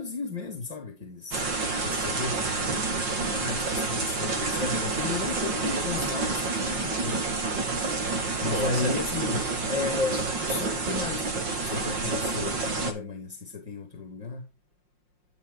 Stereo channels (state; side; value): late; left; 5.6 ms